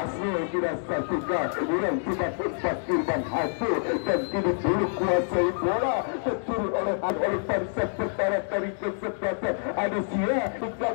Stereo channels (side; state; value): right; silent; digital silence